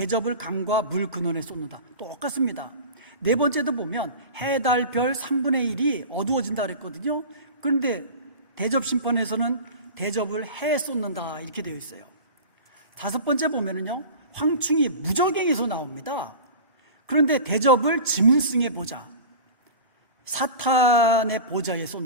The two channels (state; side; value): inverted; both; correlation -0.34